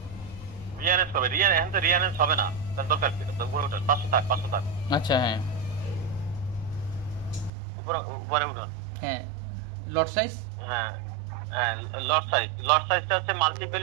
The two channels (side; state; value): left; drops out; at 7.5 s